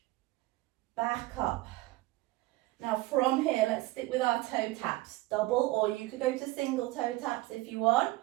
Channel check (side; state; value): left; quieter; 19.2 dB